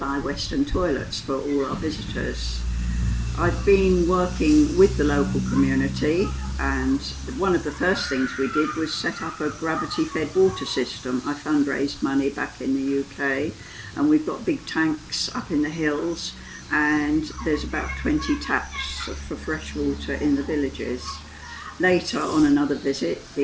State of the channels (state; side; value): identical; both; correlation 1.00